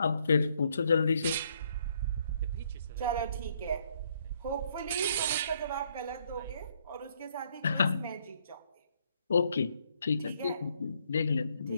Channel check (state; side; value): inverted; both; correlation -0.70